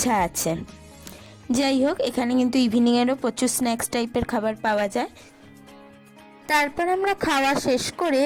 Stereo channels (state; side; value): identical; both; correlation 1.00